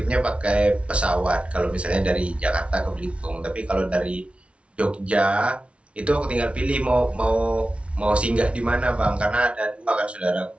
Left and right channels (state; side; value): late; left; 0.061 ms